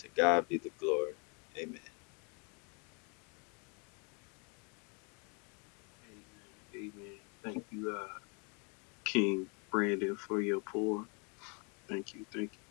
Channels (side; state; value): right; quieter; 35.3 dB